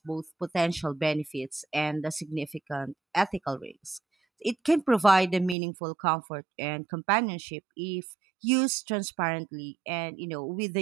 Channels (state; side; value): drops out; left; at 5.6 s